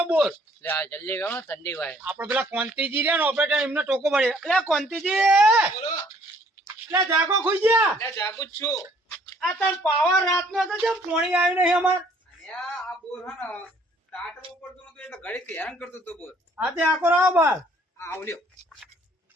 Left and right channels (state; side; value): normal; both; correlation 0.61